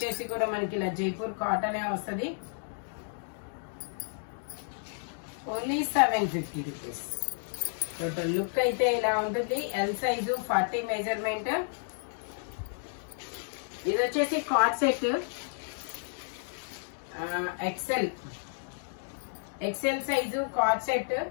కూడా మనకి ఇలా జైపూర్ కాటనే వస్తుంది. Only 750 rupees. టోటల్ లుక్ అయితే ఇలా ఉంటుంది. L size, 40 measurement. ఇది వచ్చేసి cord set, XL size cord set,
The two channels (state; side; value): silent; right; digital silence